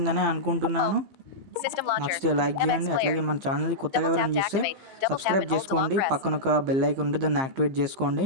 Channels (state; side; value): late; left; 15 ms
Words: అనుకుంటున్నాను. నచ్చితే లైక్ చేయండి, అట్లాగే మన ఛానల్ని కొత్తగా ఎవరైనా చూస్తే సబ్స్క్రైబ్ చేసుకోండి. పక్కన ఒక బెల్ ఐకాన్ ఉంటే దాన్ని యాక్టివేట్ చేసుకోండి.